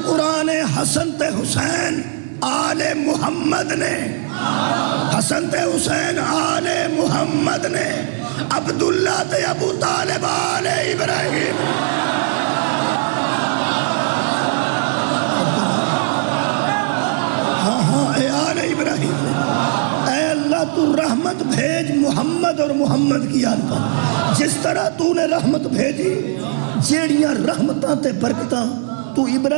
قرآن حسن تے حسین آل محمد نے، حسن تے حسین آل محمد نے، عبداللہ تے ابو طالب آل ابراہیم. ہاں اے آل ابراہیم نے. اے اللہ تو رحمت بھیج محمد اور محمد کی آل پر جس طرح تو نے رحمت بھیجی جیڑیاں رحمتاں تے برکتاں تو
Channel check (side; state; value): left; silent; digital silence